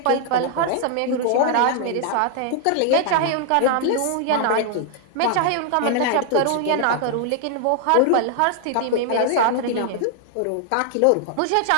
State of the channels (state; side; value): different; both; correlation 0.00